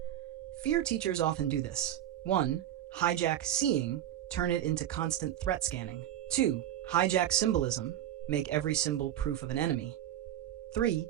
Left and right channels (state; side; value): quieter; left; 11.8 dB